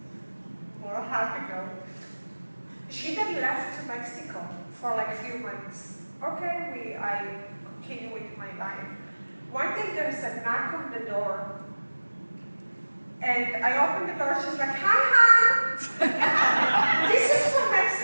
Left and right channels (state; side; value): inverted; both; correlation -1.00